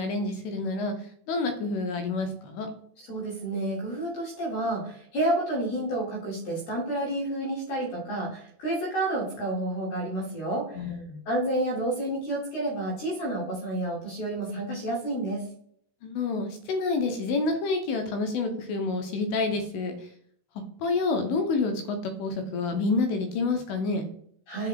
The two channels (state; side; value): late; right; 16 ms